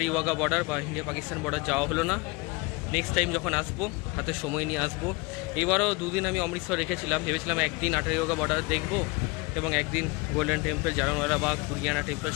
ওয়াঘা বর্ডার বা ইন্ডিয়া পাকিস্তান বর্ডার যাওয়া হলো না। নেক্সট টাইম যখন আসবো হাতে সময় নিয়ে আসবো। এবারও 2 দিন আমি অমৃতসর রেখেছিলাম, ভেবেছিলাম একদিন আটারি ওয়াঘা বর্ডার দেখবো এবং একদিন golden temple, Jallianwala Bagh, Durgiana temple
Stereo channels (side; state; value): right; quieter; 26.4 dB